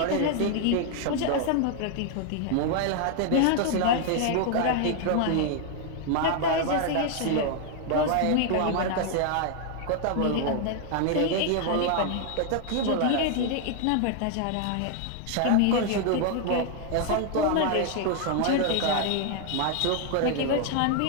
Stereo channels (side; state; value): both; different; correlation 0.00